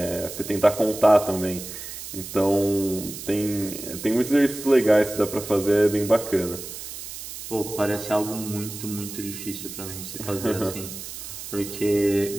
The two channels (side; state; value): right; noise; hiss, 10 dB below the sound